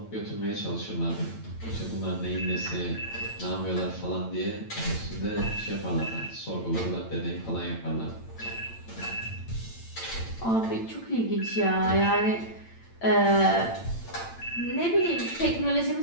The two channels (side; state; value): right; late; 8.9 ms